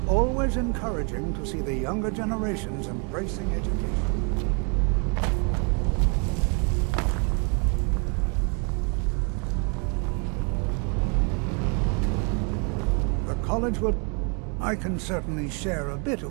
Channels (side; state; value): left; quieter; 35.8 dB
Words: always encouraging to see the younger generations embracing education. The college will... I can certainly share a bit